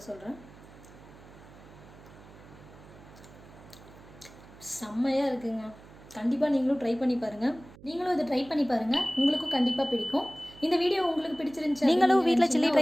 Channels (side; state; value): right; noise; hum, 21 dB below the sound